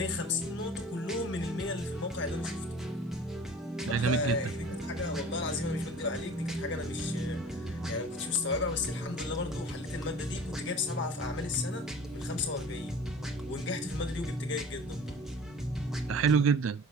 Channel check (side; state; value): both; normal; correlation 0.42